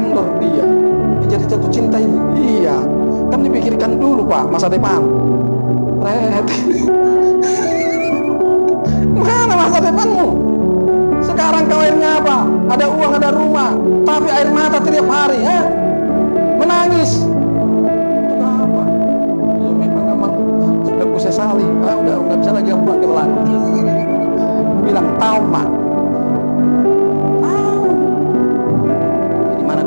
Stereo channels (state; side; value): inverted; both; correlation -1.00